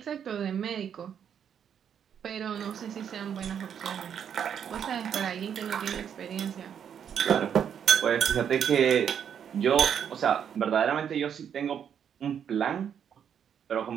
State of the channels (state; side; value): quieter; left; 8.3 dB